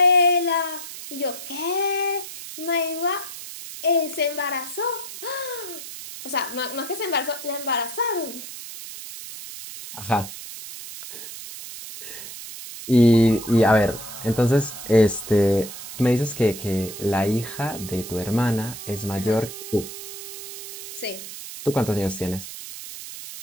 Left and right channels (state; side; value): noise; right; hiss, 11 dB below the sound